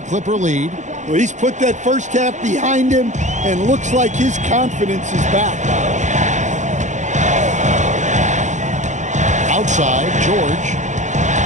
Clipper lead. Well, he's put that first half behind him and looks like his confidence is back. Outside, George.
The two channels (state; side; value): late; left; 0.35 ms